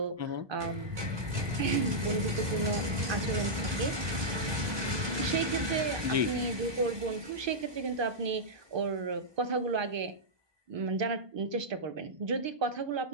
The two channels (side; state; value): left; late; 1.2 ms